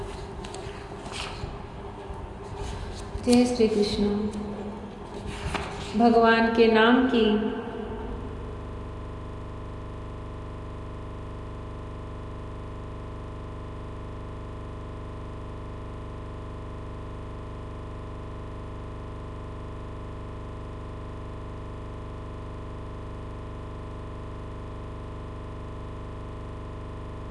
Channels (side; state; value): both; identical; correlation 1.00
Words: जय श्री कृष्ण। भगवान के नाम की